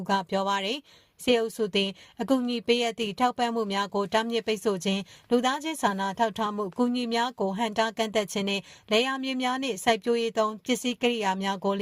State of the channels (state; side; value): identical; both; correlation 1.00